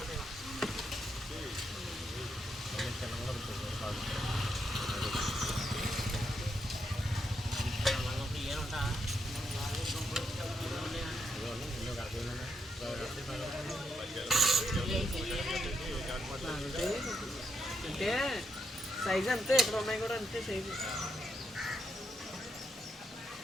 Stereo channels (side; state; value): both; normal; correlation 0.80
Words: అంటే సైజ్ అంతే, ఇక్కడ ఉన్నాయి కూడా అంతే సైజు.